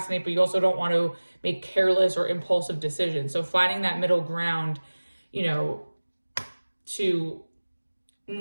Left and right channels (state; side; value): inverted; both; correlation -1.00